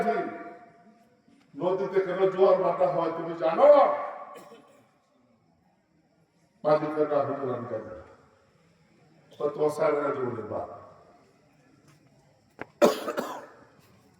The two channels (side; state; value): both; identical; correlation 1.00